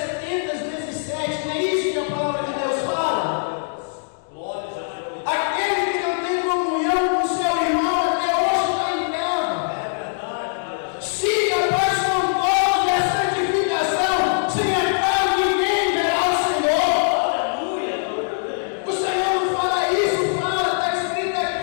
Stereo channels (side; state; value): right; silent; digital silence